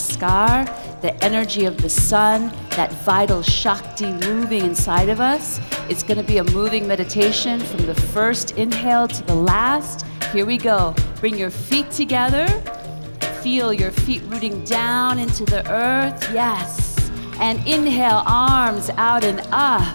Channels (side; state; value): both; inverted; correlation -1.00